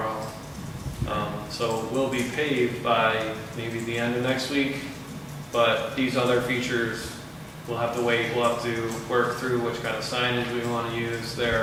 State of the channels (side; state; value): both; identical; correlation 1.00